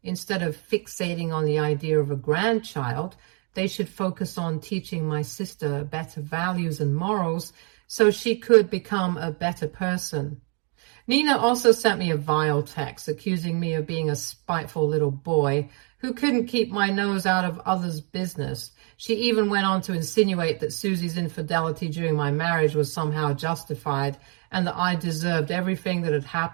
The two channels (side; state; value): left; quieter; 36.9 dB